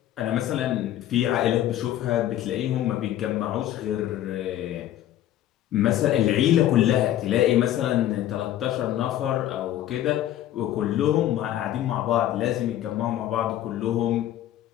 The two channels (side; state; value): right; quieter; 12.5 dB